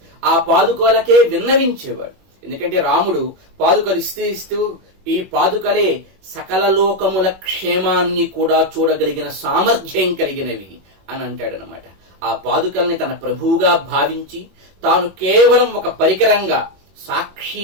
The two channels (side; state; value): left; late; 21 ms